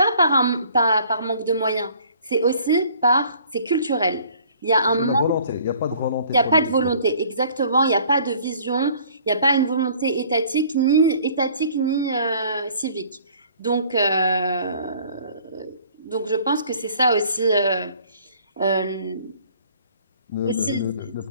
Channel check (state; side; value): inverted; both; correlation -0.54